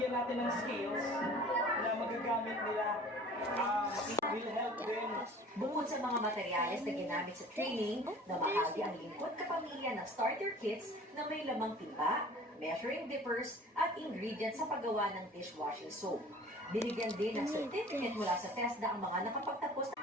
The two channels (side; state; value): both; normal; correlation 0.46